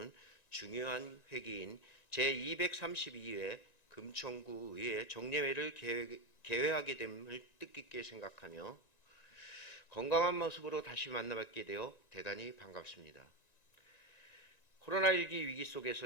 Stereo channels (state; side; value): late; right; 1.9 ms